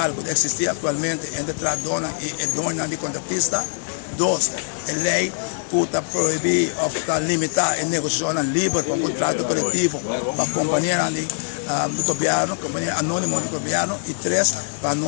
que existe atualmente entre Tradona e dona de contratista. 2. A lei que está proibir ou está limitar a negociação livre para o contrato coletivo para a companhia do governo, companhia anônima do governo. E 3. Para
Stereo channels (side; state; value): right; silent; digital silence